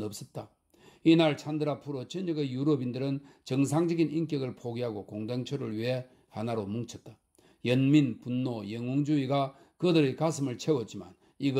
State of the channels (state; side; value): identical; both; correlation 1.00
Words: 없었다. 이날 찬드라 프로 전역의 유럽인들은 정상적인 인격을 포기하고 공동체를 위해 하나로 뭉쳤다. 연민, 분노, 영웅주의가 그들의 가슴을 채웠지만